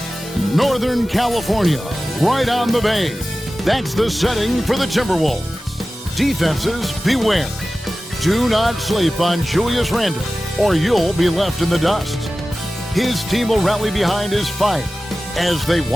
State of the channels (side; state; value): both; normal; correlation 0.95